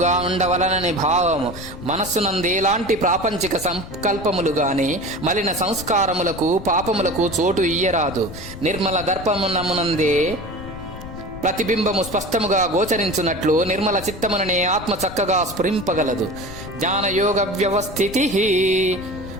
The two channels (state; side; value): noise; left; rumble, 13 dB below the sound